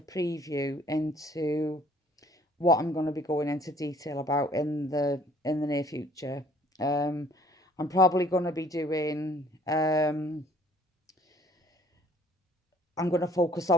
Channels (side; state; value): both; normal; correlation 0.58